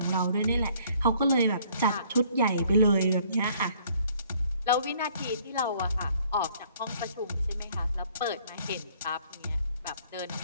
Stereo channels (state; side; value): inverted; both; correlation -0.60